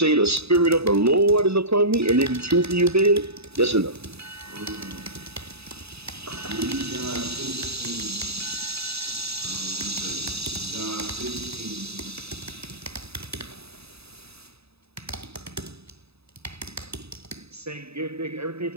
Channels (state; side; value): late; left; 0.78 ms